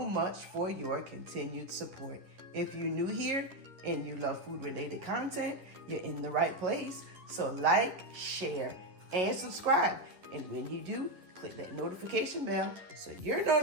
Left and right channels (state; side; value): late; left; 11 ms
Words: for your continued support. If you're new here and you love food-related content, you're in the right place. So like, share, and subscribe. And when you do, click that notification bell so you're